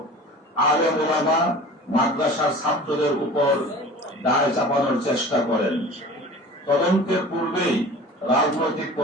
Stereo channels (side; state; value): both; normal; correlation 0.40